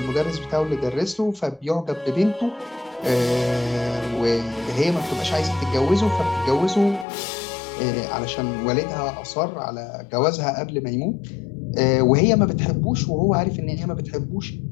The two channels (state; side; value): drops out; right; at 7.1 s